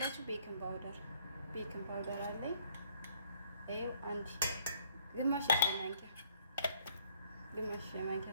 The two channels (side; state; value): both; inverted; correlation -0.62